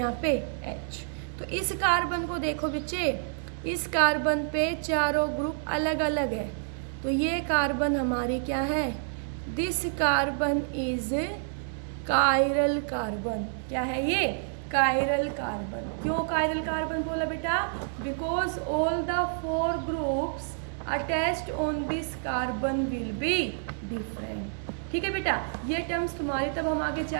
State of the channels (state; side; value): silent; left; digital silence